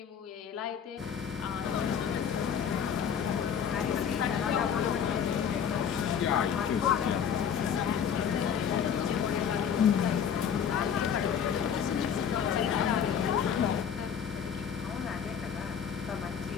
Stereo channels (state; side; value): quieter; right; 7.9 dB